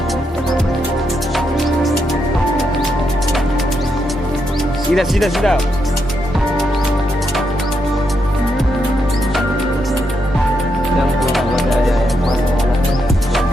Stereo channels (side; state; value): both; normal; correlation 0.81